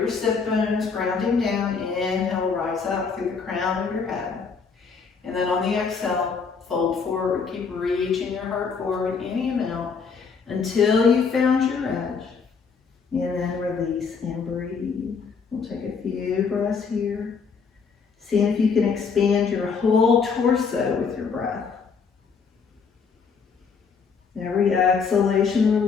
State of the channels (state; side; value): quieter; right; 5.6 dB